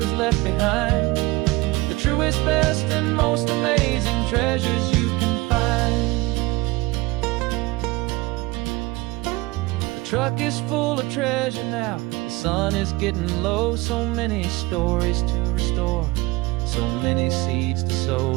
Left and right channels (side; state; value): left; quieter; 21.2 dB